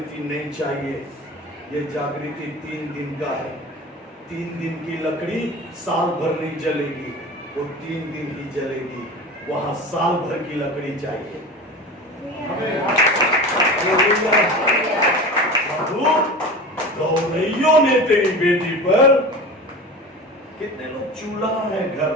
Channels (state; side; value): normal; both; correlation 0.33